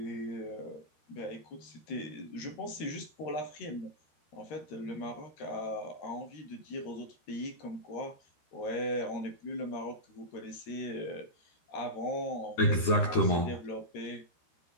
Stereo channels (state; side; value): late; right; 13 ms